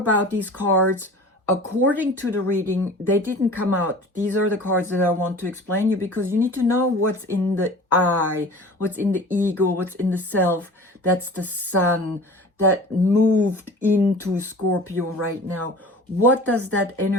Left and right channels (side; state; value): both; normal; correlation 0.41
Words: these cards according to the reading. They didn't come out. These are the cards that I want to explain you, because you need to know what's in the I, what's in the ego, what's in the self. That's the sun that moved into Scorpio right now. What does that